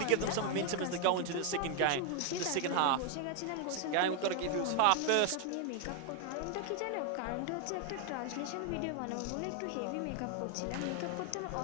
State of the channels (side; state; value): both; different; correlation 0.01